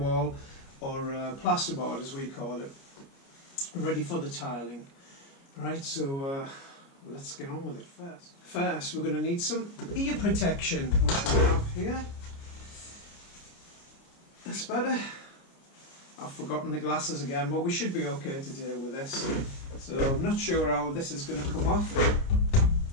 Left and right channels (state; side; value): late; right; 29 ms